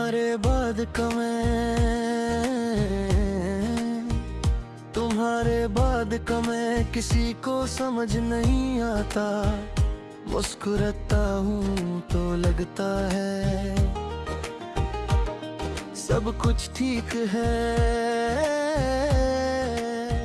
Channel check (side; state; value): both; identical; correlation 1.00